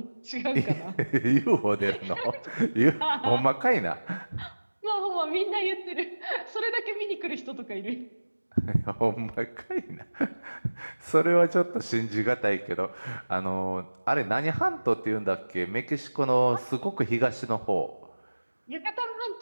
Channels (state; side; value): inverted; both; correlation -1.00